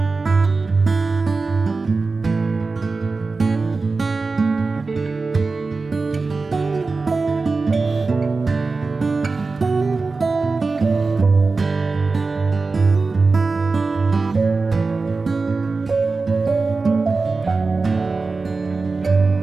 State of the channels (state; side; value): quieter; left; 4.0 dB